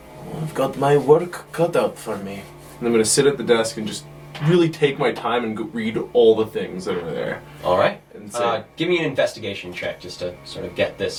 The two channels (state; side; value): identical; both; correlation 1.00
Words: "Oh, I've got my work cut out for me." And I'm going to sit at the desk and just really take my time and read all the things that are there. All right. And say, Give me an investigation check just to sort of get this